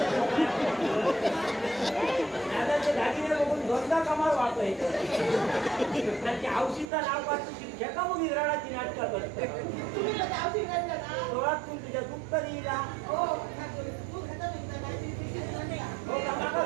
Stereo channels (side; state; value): left; drops out; at 6.9 s